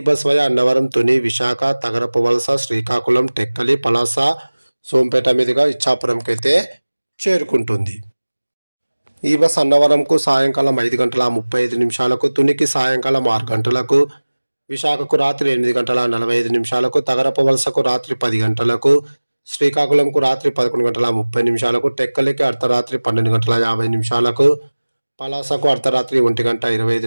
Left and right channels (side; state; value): both; inverted; correlation -1.00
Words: బస్ వయా అన్నవరం, తుని, విశాఖ, తగరపు వలస, శ్రీకాకుళం, టెక్కలి, పలాస, సోంపేట మీదుగా ఇచ్చాపురంకి అయితే చేరుకుంటుంది. ఈ బస్ అన్నవరంకు సాయంకాలం 5:35, తునికి సాయంకాలం 6 గంటలకు, విశాఖకు రాత్రి 8:45, తగరపు వలసకు రాత్రి 10 గంటలకు, శ్రీకాకుళంకు రాత్రి 11:30, టెక్కలికి అర్ధరాత్రి 12:50, పలాసకు అర్ధరాత్రి